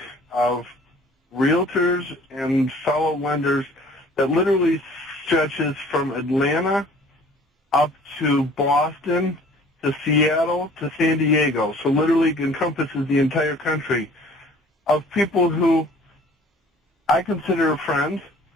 of realtors and fellow lenders that literally stretches from Atlanta up to Boston, to Seattle, to San Diego. So literally encompasses the entire country of people who I consider friends,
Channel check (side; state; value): both; normal; correlation 0.51